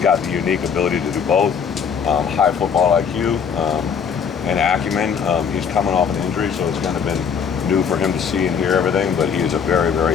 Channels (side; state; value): right; quieter; 6.8 dB